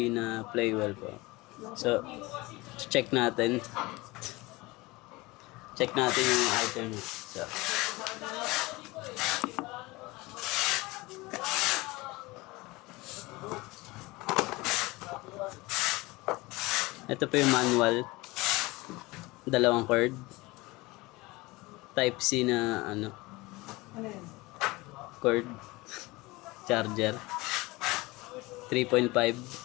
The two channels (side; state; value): right; quieter; 22.2 dB